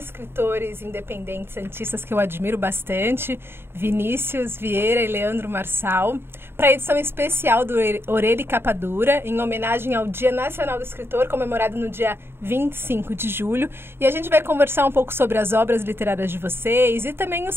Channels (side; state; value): left; late; 0.11 ms